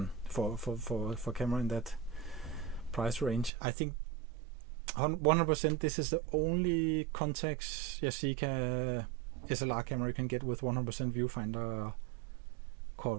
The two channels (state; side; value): drops out; left; at 3.5 s